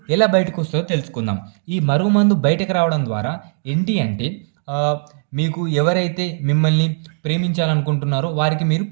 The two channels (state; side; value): silent; left; digital silence